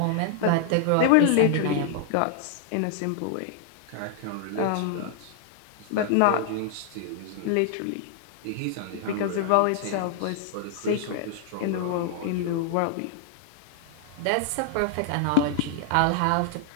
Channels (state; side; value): different; both; correlation 0.00